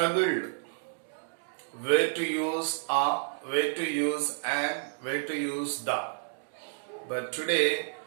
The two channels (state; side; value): silent; left; digital silence